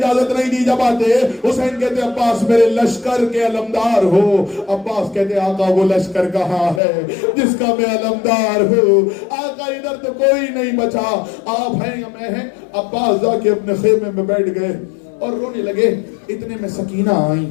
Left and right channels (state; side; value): drops out; right; at 6.8 s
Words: نہیں دی. جب آتے حسین کہتے عباس میرے لشکر کے علمدار ہو. عباس کہتے آقا وہ لشکر کہاں ہے جس کا میں علمدار ہوں. آقا ادھر تو کوئی نہیں بچا، آپ ہیں یا میں ہیں. عباس جا کے اپنے خیمے میں بیٹھ گئے اور رونے لگے. اتنے میں سکینہ آئی